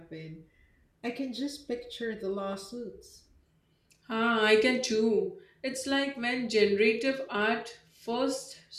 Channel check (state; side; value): identical; both; correlation 1.00